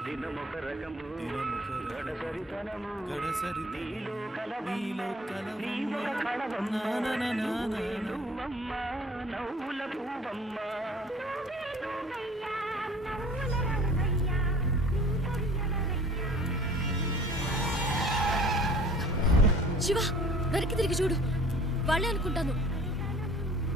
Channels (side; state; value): both; normal; correlation 0.50